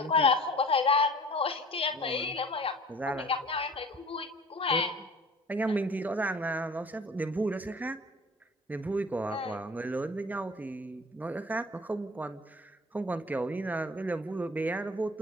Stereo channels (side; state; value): both; normal; correlation 0.45